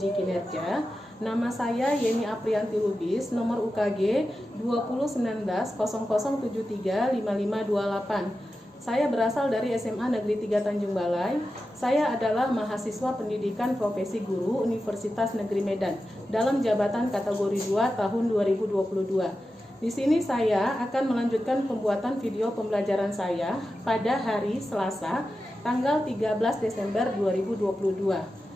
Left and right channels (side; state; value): both; normal; correlation 0.92